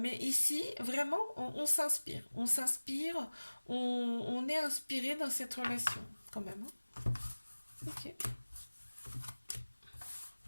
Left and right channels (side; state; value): both; inverted; correlation -1.00